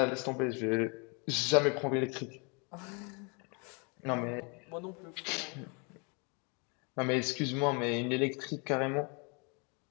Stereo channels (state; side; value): quieter; right; 33.3 dB